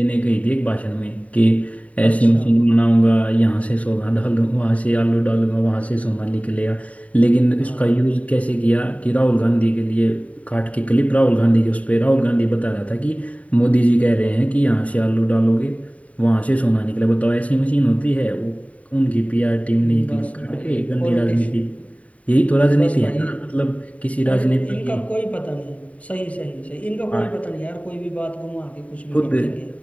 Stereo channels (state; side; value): late; right; 0.067 ms